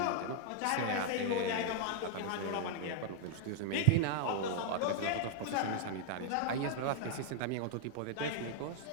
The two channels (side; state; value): both; different; correlation 0.00